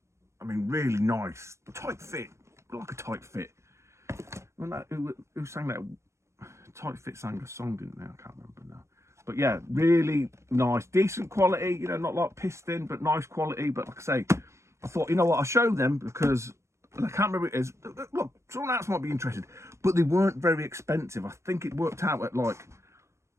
I mean, really nice, tight fit, like a tight fit. Who sang that? Tight Fit sang a song, didn't they? I can't remember now. But yeah, really nice, decent quality, you know, not like pissed in, but nice quality. But like I say, I thought, you know what, I'll show them because I can't remember what it is. Look, someone else might be interested, but they weren't very expensive. I think it worked out at like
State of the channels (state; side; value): late; left; 0.14 ms